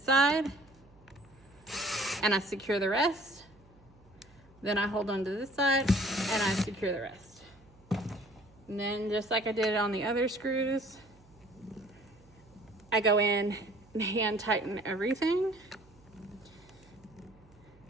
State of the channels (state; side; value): noise; right; hum, 27 dB below the sound